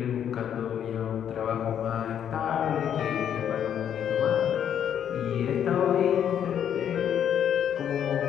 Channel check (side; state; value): right; quieter; 9.2 dB